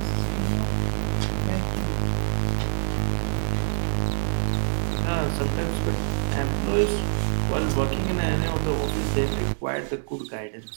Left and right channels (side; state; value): left; silent; digital silence